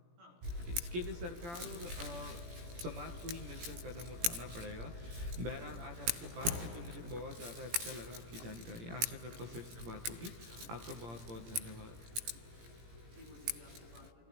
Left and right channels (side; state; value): left; late; 17 ms